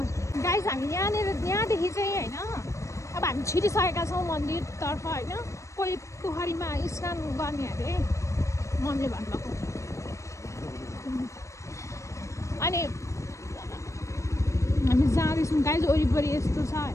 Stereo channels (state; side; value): late; right; 0.15 ms